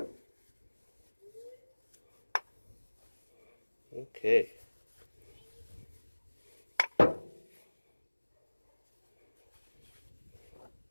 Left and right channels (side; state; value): both; inverted; correlation -1.00